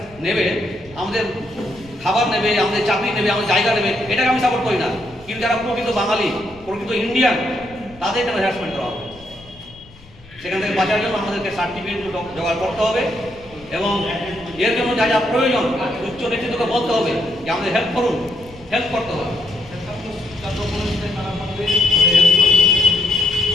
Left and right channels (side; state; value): left; noise; rumble, 23 dB below the sound